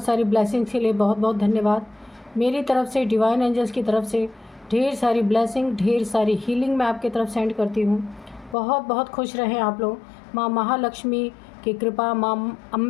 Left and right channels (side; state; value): right; drops out; at 8.6 s